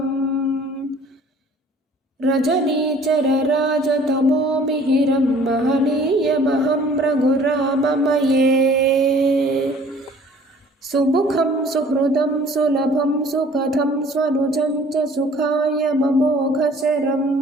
रजनीचरराजतमोमिहिरं महनीयमहं रघुराममये सुमुखं सुहृदं सुलभं सुकथं स्वनुजं च सुखाय ममोघशरम्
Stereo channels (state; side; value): normal; both; correlation 0.53